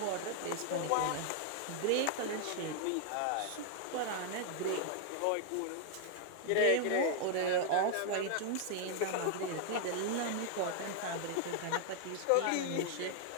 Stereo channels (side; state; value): both; different; correlation 0.00